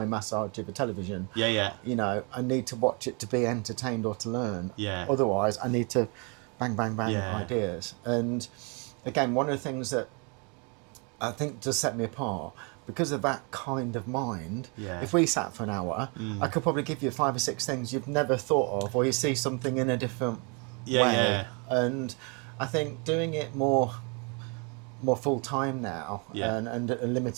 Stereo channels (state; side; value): quieter; left; 33.8 dB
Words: massage of a television. Yeah, yeah. You know, I need to watch it to be entertained or to learn. Yeah. Otherwise, I need to bang, bang, bang ideas. And again, one of the things that I think does set me apart, because of that kind of mind, if we sat for an hour, I could probably give you 5 or 6 things you've never thought of, or you see something in a different way. Yeah. And I think doing it more full time now, and a